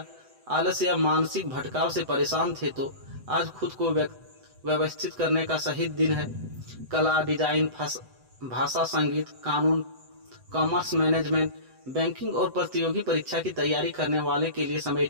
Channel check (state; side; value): late; left; 7.9 ms